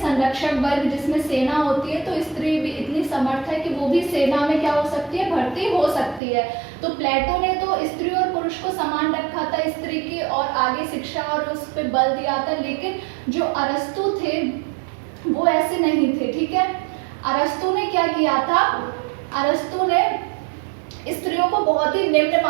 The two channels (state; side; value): drops out; left; at 6.2 s